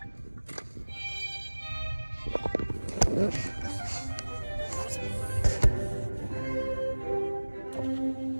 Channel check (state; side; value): inverted; both; correlation -1.00